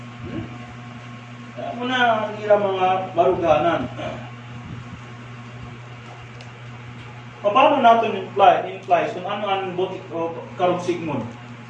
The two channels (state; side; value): identical; both; correlation 1.00